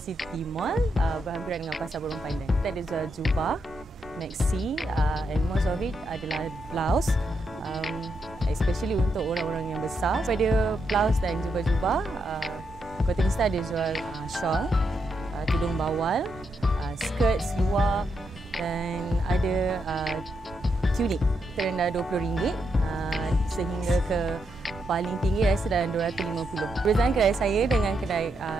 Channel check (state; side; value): normal; both; correlation 0.81